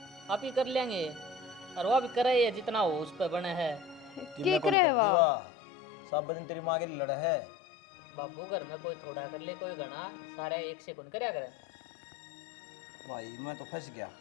आप ही कर लेंगे, और वो भी करे है जितना हो उस पर बने है। के करे वाह सब दिन तेरी माँ के लिए लड़ा है। बाबू घर में कोई थोड़ा कर ले, कोई घना, सारे एक से कौन करया करे। भाई मैं तो फंस गया,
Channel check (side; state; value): right; drops out; at 4.8 s